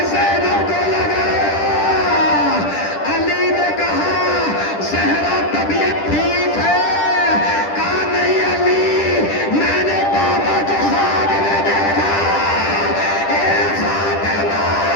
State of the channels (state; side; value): late; right; 10 ms